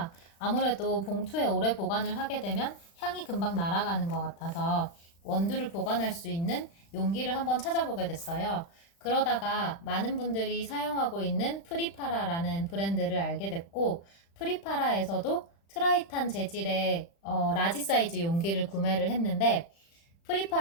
아무래도 봉투에 오래 보관을 하게 되면 향이 금방 날아가는 것 같아서 원두를 보관할 수 있는 용기를 한번 찾아보게 됐어요. 그러다가 많은 분들이 사용하고 있는 프리파라라는 브랜드를 알게 됐고, 프리파라에서도 트라이탄 재질의 라지 사이즈 용기를 구매를 했는데,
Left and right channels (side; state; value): right; late; 35 ms